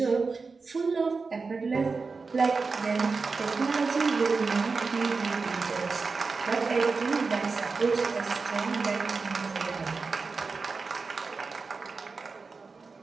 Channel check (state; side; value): quieter; left; 4.4 dB